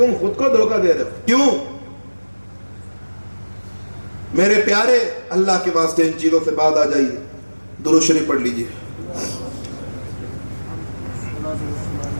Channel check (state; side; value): inverted; both; correlation -1.00